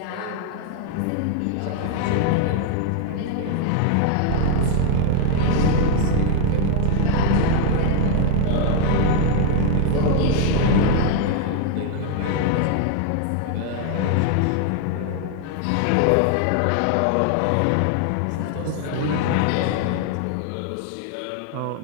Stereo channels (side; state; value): both; different; correlation 0.00